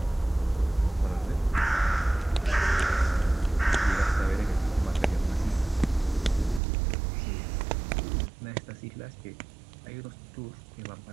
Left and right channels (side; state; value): left; drops out; at 6.6 s